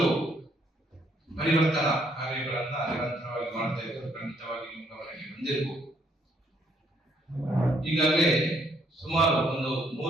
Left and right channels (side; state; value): both; normal; correlation 0.69